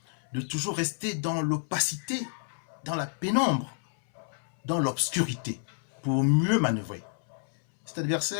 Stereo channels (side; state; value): right; silent; 58 dB below the other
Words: de toujours rester dans l'opacité, dans la pénombre, dans l'obscurité, pour mieux manœuvrer. Cet